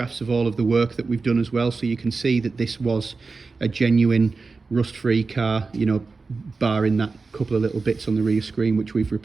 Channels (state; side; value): quieter; left; 4.2 dB